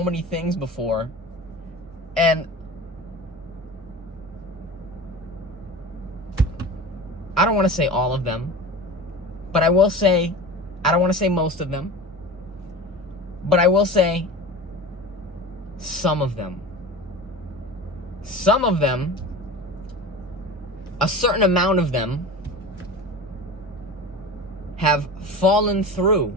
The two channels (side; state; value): both; normal; correlation 0.33